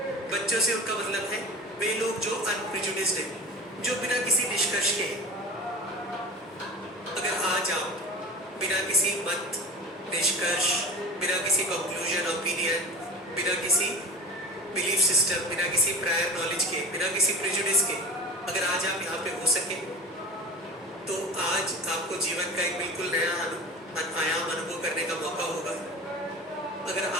बच्चों से उनका मतलब है वे लोग जो अनप्रिजुडिस्ड हैं, जो बिना किसी निष्कर्ष के। अगर आज आप बिना किसी मत, निष्कर्ष, बिना किसी कंक्लूजन, ओपिनियन, बिना किसी बिलीफ सिस्टम, बिना किसी प्रायर नॉलेज के, बिना किसी प्रिजुडिस के, अगर आज आप यहाँ पे हो सके, तो आज आपको जीवन का एक बिल्कुल नया आयाम अनुभव करने का मौका होगा। अगर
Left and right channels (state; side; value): normal; both; correlation 0.33